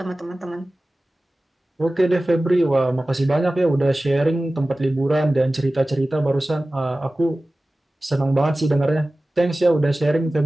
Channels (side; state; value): both; normal; correlation 0.97